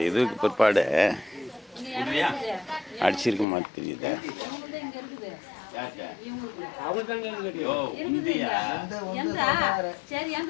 இதுக்கு பிற்பாடு அடிச்சிருக்க மாதிரி தெரியுது.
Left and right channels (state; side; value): drops out; right; at 3.5 s